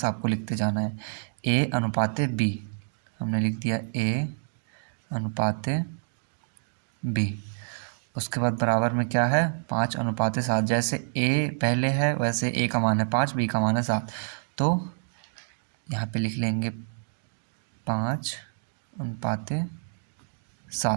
आपको लिखते जाना है। A अनुपाते B, हमने लिख दिया A अनुपाते B। उसके बाद बराबर में क्या है? 5:7। जैसे A पहले है वैसे A का मान है 5, B का मान है 7, तो यहाँ पे लिख लेंगे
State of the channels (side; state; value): left; silent; digital silence